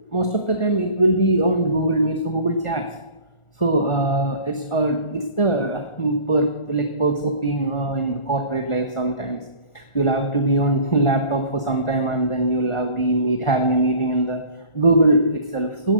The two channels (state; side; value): late; right; 1.4 ms